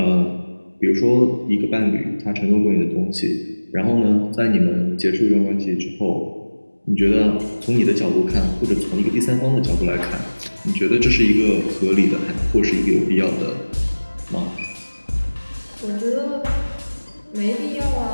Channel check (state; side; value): inverted; both; correlation -1.00